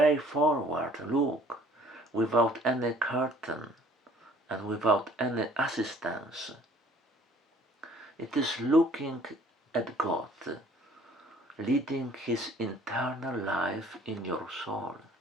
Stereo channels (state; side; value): normal; both; correlation 0.55